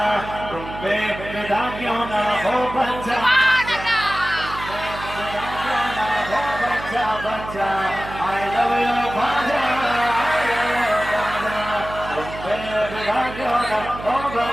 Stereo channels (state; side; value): noise; right; hum, 12 dB below the sound